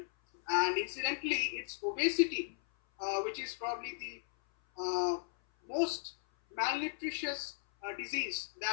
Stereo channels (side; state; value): right; silent; 54 dB below the other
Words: and incidentally, it's obesity which is probably the most malnutritious disease